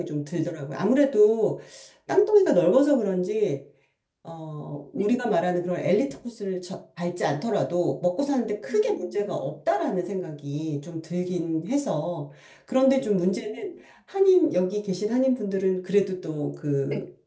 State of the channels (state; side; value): identical; both; correlation 1.00